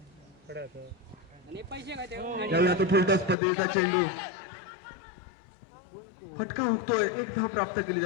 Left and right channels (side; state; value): right; drops out; at 3.4 s